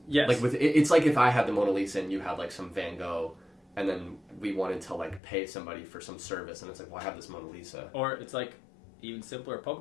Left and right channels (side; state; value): right; drops out; at 5.2 s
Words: Yes. Like it's like if I had the Mona Lisa and you had like some Van Gogh, and then we wanted to like pay somebody for some service, and it's like, well, I have this Mona Lisa. Or it's like even simpler,